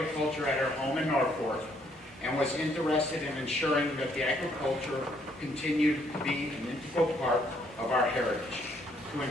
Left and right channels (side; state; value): both; normal; correlation 0.68